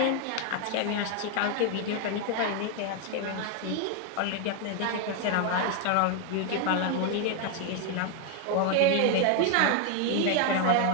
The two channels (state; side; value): different; both; correlation 0.01